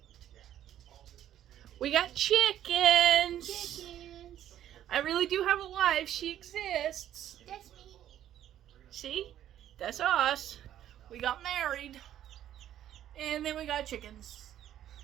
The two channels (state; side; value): quieter; left; 11.4 dB